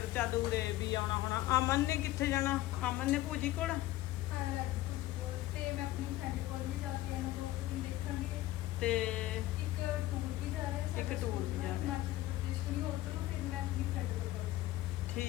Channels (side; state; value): right; quieter; 16.1 dB